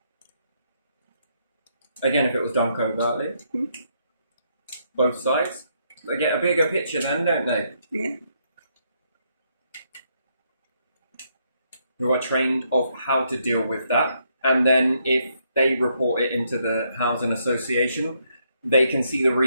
Again, if it was done covertly. Both sides. They get a bigger picture then, don't they? Yeah. Who are trained of how to deal with that. And then if they report it into the housing association, they can see the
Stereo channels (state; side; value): inverted; both; correlation -0.75